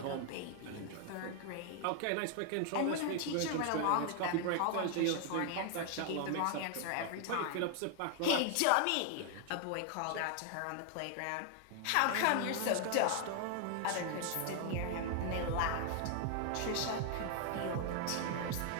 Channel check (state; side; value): different; both; correlation 0.00